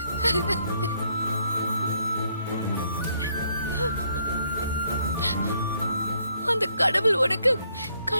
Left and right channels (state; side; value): inverted; both; correlation -0.71